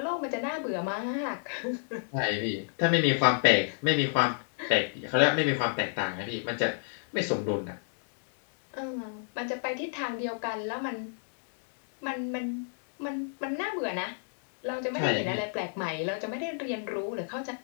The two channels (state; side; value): silent; right; digital silence